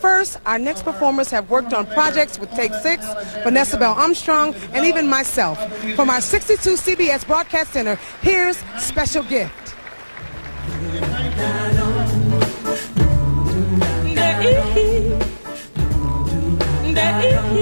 our next performers have worked on projects with Take 6, Vanessa Bell Armstrong, and even myself. From our 62 CBS Broadcast Center, here's Special Gift.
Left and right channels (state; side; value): inverted; both; correlation -1.00